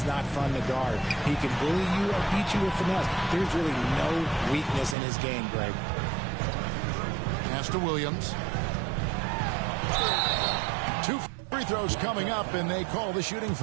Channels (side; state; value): left; drops out; at 5.0 s